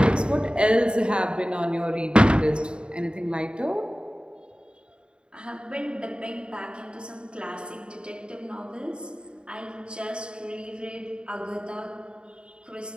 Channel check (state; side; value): late; left; 0.052 ms